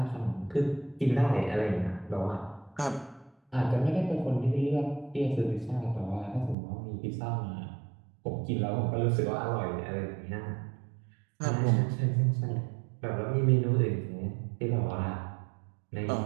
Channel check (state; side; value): drops out; left; at 6.6 s